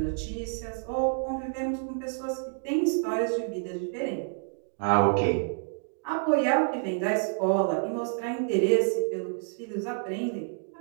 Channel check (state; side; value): silent; left; digital silence